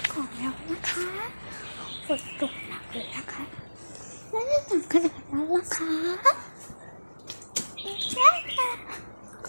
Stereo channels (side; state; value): both; inverted; correlation -1.00